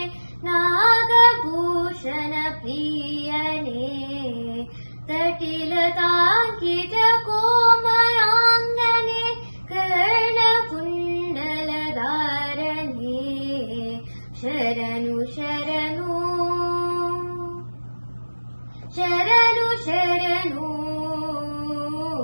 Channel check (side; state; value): both; inverted; correlation -1.00